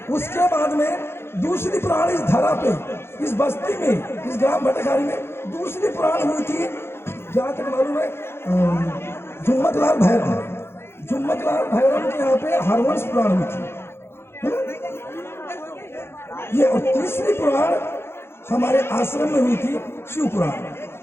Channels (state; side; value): late; right; 0.12 ms